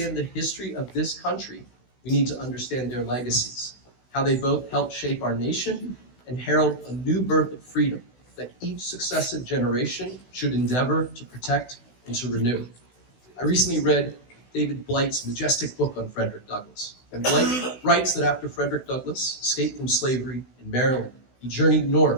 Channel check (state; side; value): late; right; 16 ms